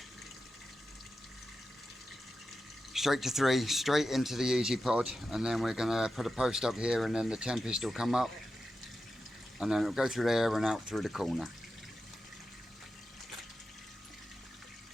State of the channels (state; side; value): normal; both; correlation 0.91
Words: Straight to 3, straight into the Easy Pod, and then we're going to put a post up here and then the Tempest will come up and then it'll go through there and out through the corner.